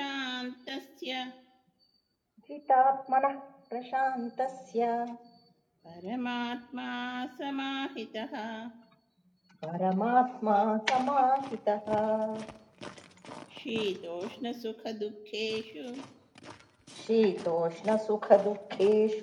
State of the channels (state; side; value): identical; both; correlation 1.00